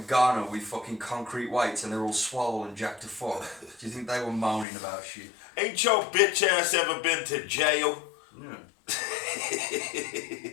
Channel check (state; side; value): drops out; right; at 4.7 s